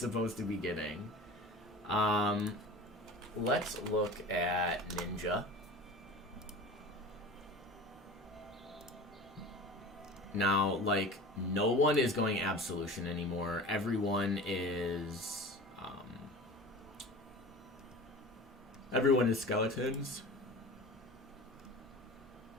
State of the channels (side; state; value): both; normal; correlation 0.36